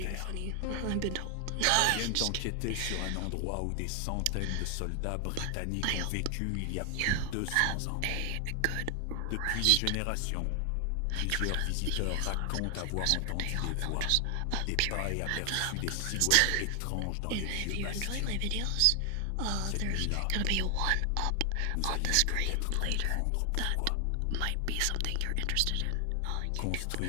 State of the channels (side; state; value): both; different; correlation 0.00